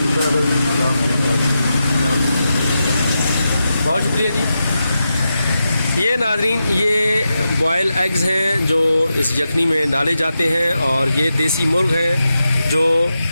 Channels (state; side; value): inverted; both; correlation -0.89